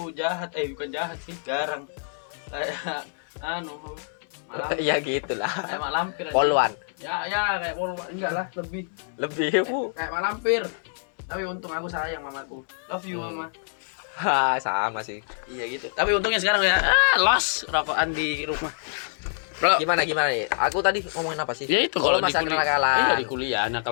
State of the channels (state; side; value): silent; right; 61 dB below the other